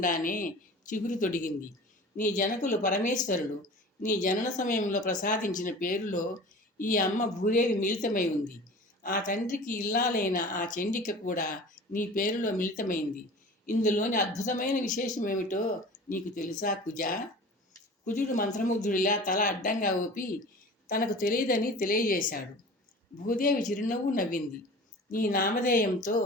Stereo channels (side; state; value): both; normal; correlation 0.39